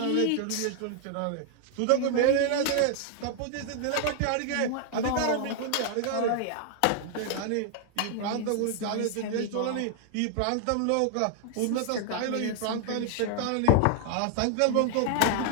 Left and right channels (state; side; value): different; both; correlation 0.00